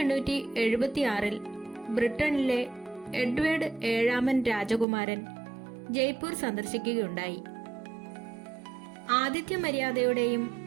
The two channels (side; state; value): left; drops out; at 4.9 s